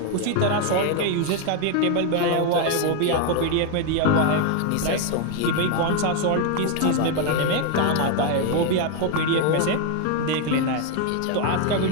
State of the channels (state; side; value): different; both; correlation 0.01